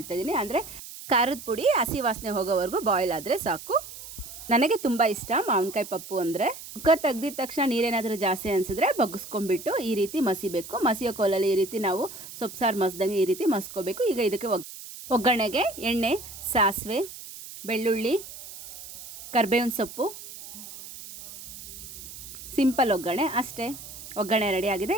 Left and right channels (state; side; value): noise; right; hiss, 13 dB below the sound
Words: ಇದ್ದೀನಿ. ಅಂದರೆ ಖಾರದ ಪುಡಿ ಹಸಿ ವಾಸನೆ ಹೋಗೋವರೆಗೂ ಬಾಯ್ಲ್ ಆದರೆ ಸಾಕು. ನನಗೆ ತುಂಬ ಇಷ್ಟ ಮಾವಿನಕಾಯಿ ಪಪ್ಪು ಅಂದರೆ. ಕುಕ್ಕರ್ ತೆಗ್ದಿದ ತಕ್ಷಣ ನೀರೇನಾದರೂ ಜಾಸ್ತಿ ಅನಿಸಿದ್ರೆ ಬಗ್ಗಿಸ್ಕೊಂಡ್ಬಿಟ್ಟು ಈ ರೀತಿ ಮಸಿಬೇಕು. ಮಸಿಯೋ ಕೋಲಲ್ಲಿ ಈ ರೀತಿ ನಾವು ಸೊಪ್ಪು ಸಾರು ಮಸ್ದಂಗೆ ಈ ರೀತಿ ಮಸ್ಕೋಬೇಕು. ಈಗ ಇದಕ್ಕೆ ಒಗ್ಗರಣೆಗೆ ಎಣ್ಣೆ, ಸಾಸಿವೆ, ಬೆಳ್ಳುಳ್ಳಿ, ಕರಿಬೇವಿನ ಸೊಪ್ಪು, ಸಿಂಪಲ್ ಒಗ್ಗರಣೆ ಅಷ್ಟೇ. ಒಗ್ಗರಣೆ ರೆಡಿ ಆಗಿದೆ.